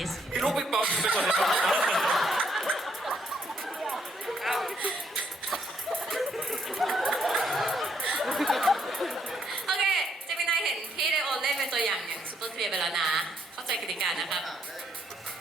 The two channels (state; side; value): normal; both; correlation 0.72